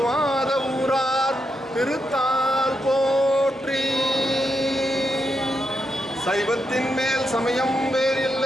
ஊரார் திருத்தால் போற்றி சைவத்தின் மேல் சமயம்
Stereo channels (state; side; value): normal; both; correlation 0.83